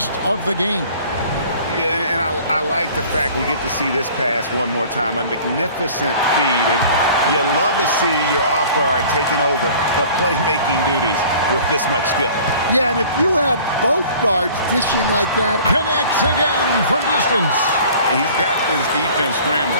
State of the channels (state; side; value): inverted; both; correlation -0.48